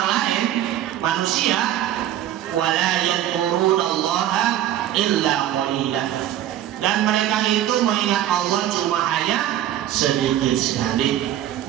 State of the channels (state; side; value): quieter; left; 12.0 dB